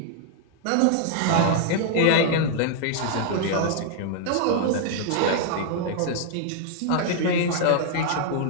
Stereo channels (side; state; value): both; different; correlation 0.00